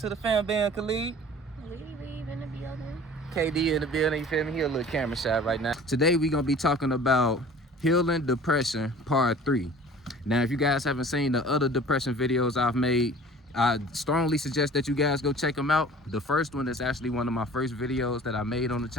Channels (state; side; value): normal; both; correlation 0.46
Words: the fan band, Khalid. Leave in the building. KD in the building, you feel me? He a little camera shy right now. Today we gonna be talking about healing depression part 3. Now, if you guys haven't seen the other depression videos I've made, I strongly suggest that you guys go check them out. The first one is actually one of my first videos that I made on the